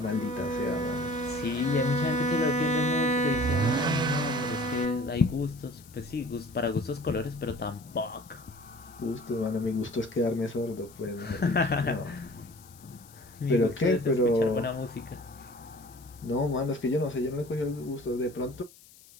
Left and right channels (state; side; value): noise; left; hiss, 23 dB below the sound